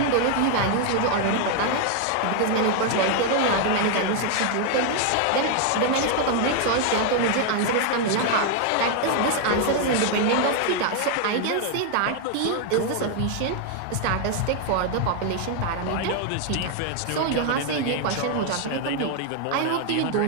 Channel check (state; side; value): different; both; correlation 0.00